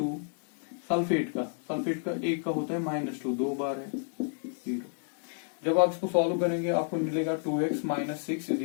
सल्फेट का 1 का होता है -2, 2 बार है, 0। जब आप इसको सॉल्व करेंगे आपको मिलेगा 2x - 6 is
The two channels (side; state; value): right; silent; 57 dB below the other